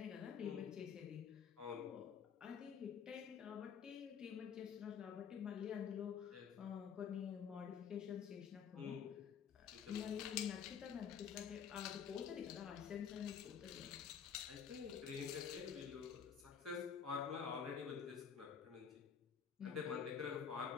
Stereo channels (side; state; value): right; quieter; 7.4 dB